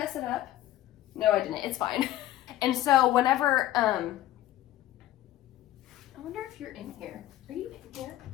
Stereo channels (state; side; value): quieter; right; 14.2 dB